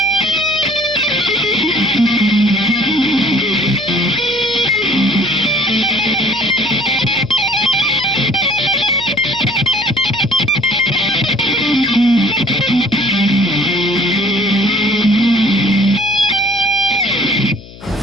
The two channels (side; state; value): left; noise; hum, 19 dB below the sound